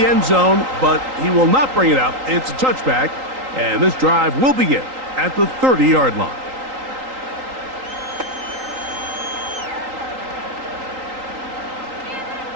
end zone, but he will not bring it out. It's a touchback, and this drive will begin at the 30-yard line.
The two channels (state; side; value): late; left; 3.8 ms